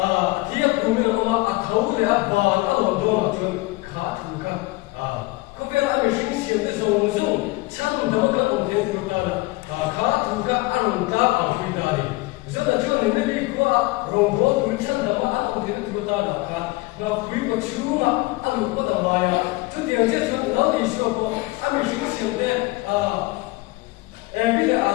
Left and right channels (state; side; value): quieter; right; 22.1 dB